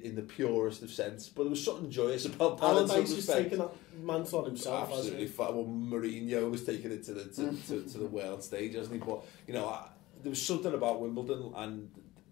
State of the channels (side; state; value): right; quieter; 18.5 dB